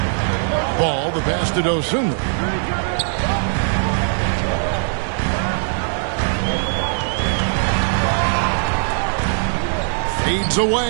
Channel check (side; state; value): left; silent; 62 dB below the other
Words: Ball, the pass to Dosunmu. Fades